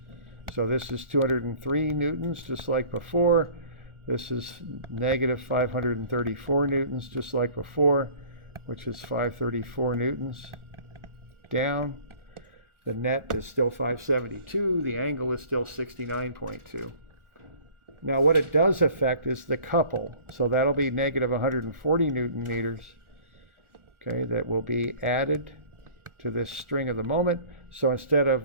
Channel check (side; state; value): left; late; 1.4 ms